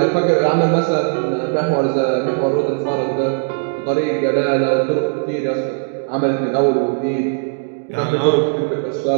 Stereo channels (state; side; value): silent; left; digital silence